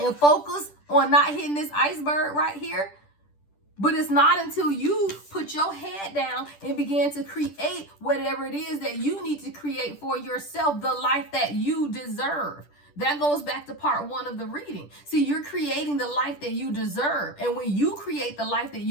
focus on not hitting this iceberg right here. But it's not until you put your head down and begin to create whatever it is that you need to create for yourself, the life that you deserve. That goes back to part 1 of the reading. See, you're creating the life that you deserve. And when you create the life that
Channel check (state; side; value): late; right; 10 ms